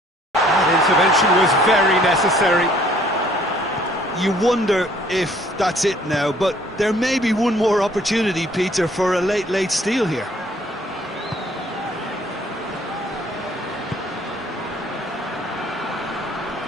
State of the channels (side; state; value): both; normal; correlation 0.59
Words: That intervention was very necessary. You wonder if that's it now, but there may be one more opportunity, Peter, for a late steal here.